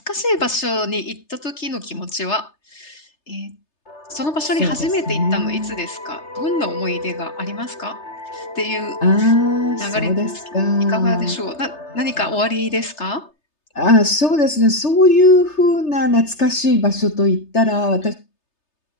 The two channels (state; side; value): late; right; 3.3 ms